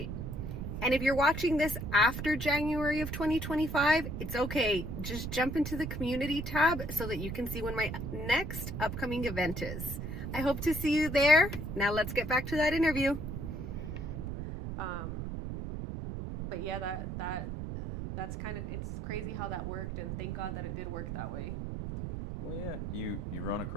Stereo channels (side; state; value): right; noise; rumble, 5 dB below the sound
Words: And if you're watching this after January of 2025, it's okay. Just jump into the community tab so that you can see when my next upcoming event is. I hope to see you there. Now let's get back to that interview. But yeah, that's kind of, it's crazy how that worked, and thank God that it did work that way. Well, yeah, you run